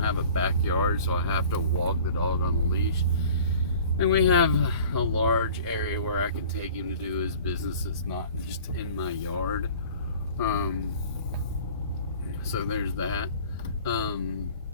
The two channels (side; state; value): both; inverted; correlation -0.46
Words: a backyard, so I have to walk the dog on a leash. And we have a large area where I can take him to do his business. It's not just in my yard. So there's that.